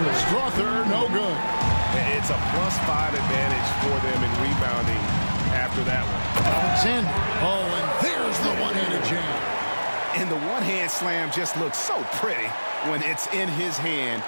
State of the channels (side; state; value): both; inverted; correlation -1.00